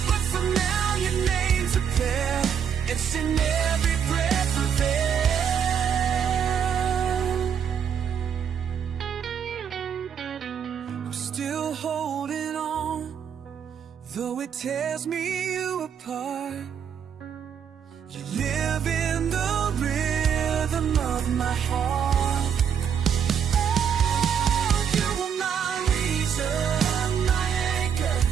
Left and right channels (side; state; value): left; quieter; 7.9 dB